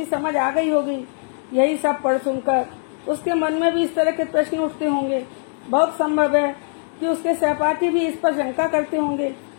समझ आ गई होगी। यही सब पढ़ सुनकर उसके मन में भी इस तरह के प्रश्न उठते होंगे। बहुत संभव है कि उसके सहपाठी भी इस पर शंका करते होंगे।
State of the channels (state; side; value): silent; right; digital silence